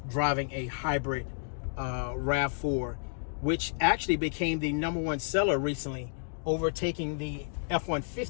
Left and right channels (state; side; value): silent; right; digital silence